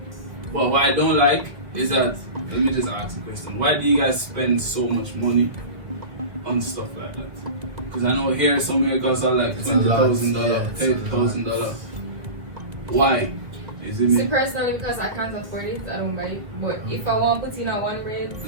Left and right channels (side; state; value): left; late; 2.1 ms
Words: But what I don't like is that, let me just ask a question. Why do you guys spend so much money on stuff like that. Because I know here somewhere costs like It's a lot, $20,000, yeah, it's a $30,000. Why? Is it See, me? personally, because I can't afford it, I don't buy it. But if I want to put in a one braid,